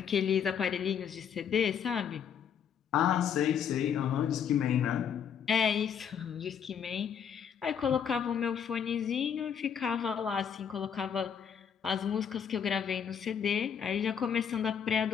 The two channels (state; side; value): quieter; right; 7.9 dB